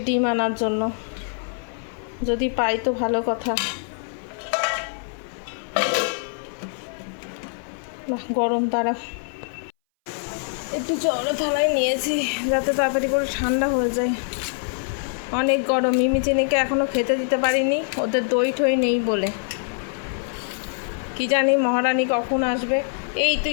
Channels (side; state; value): right; silent; 60 dB below the other